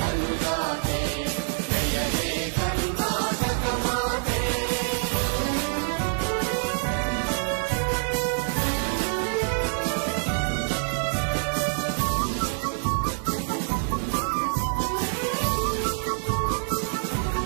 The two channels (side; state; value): left; silent; 61 dB below the other